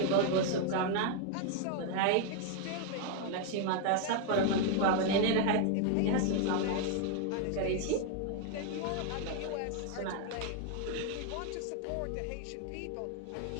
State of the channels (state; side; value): different; both; correlation 0.00